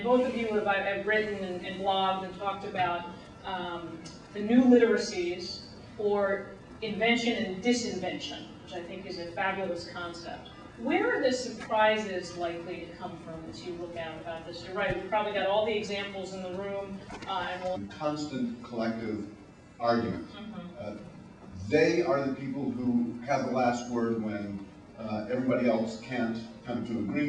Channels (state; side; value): identical; both; correlation 1.00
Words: both of you have written and blogged and talked about the new literacies, or invention and disinvention, which I think is a fabulous concept. Where are the surprises likely to come from as you look out about this? You're right, we've probably got all the examples in the room. Constant collective argument. They are the people who have the last word when everybody else can't come to